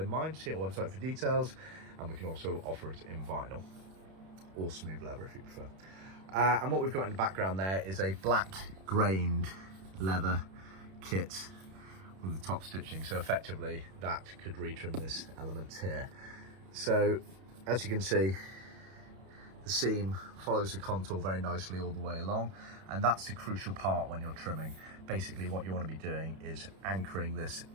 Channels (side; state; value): left; late; 31 ms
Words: mind. See our website for details, and we can also offer it in vinyl or smooth leather if you prefer. And what we've got in the background there is a black grained leather kit with the top stitching, so effectively that could retrim this element here. So as you can see, the seam follows the contour very nicely all the way along, and that's the crucial part when you're trimming. Basically what you want to be doing is anchoring this